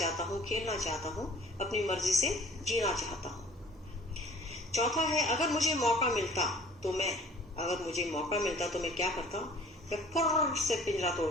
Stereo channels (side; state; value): both; normal; correlation 0.50